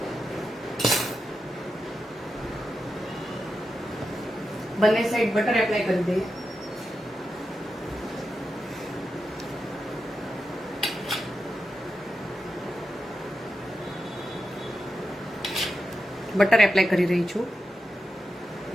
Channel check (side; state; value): both; normal; correlation 0.89